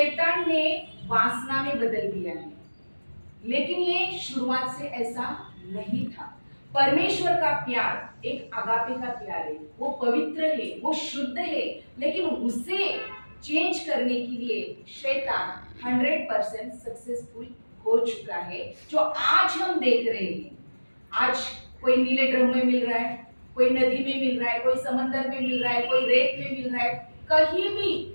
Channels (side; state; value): both; inverted; correlation -1.00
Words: ने वासना में बदल दिया है। लेकिन ये शुरुआत से ऐसा नहीं था। परमेश्वर का प्यार एक आगापे का प्यार है, वो पवित्र है, वो शुद्ध है। लेकिन उसे चेंज करने के लिए शैतान 100% सक्सेसफुल हो चुका है, जो आज हम देख रहे हैं। आज कोई नीले ड्रम में मिल रहा है, कोई नदी में मिल रहा है, कोई समंदर में मिल रहा है, कोई रेत में मिल रहा है। कहीं भी